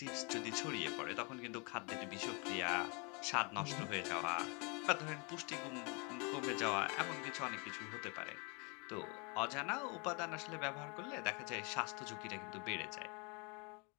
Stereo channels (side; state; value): right; quieter; 32.8 dB